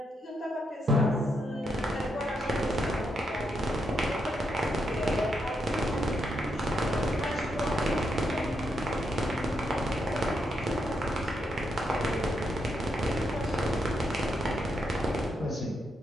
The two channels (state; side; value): normal; both; correlation 0.81